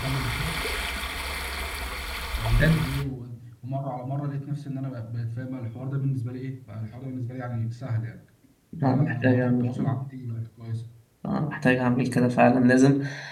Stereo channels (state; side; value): identical; both; correlation 1.00